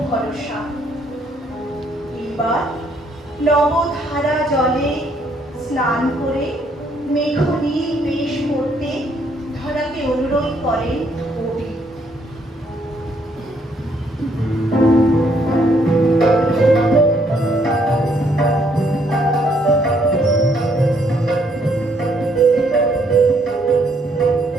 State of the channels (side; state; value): both; normal; correlation 0.69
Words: ভরসা। এবার নবধারা জলে স্নান করে মেঘনীল বেশ করতে ধরাকে অনুরোধ করেন কবি।